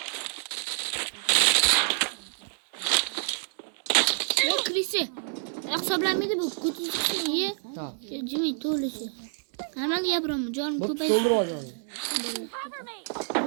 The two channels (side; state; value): left; silent; 60 dB below the other